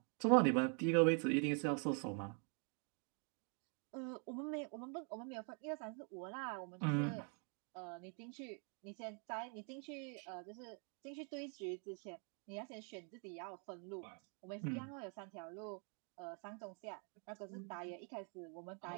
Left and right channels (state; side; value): quieter; left; 39.6 dB